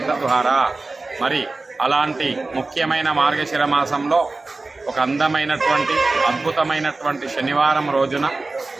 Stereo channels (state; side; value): quieter; left; 3.4 dB